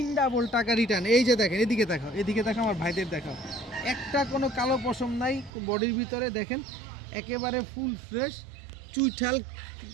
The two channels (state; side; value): drops out; left; at 5.5 s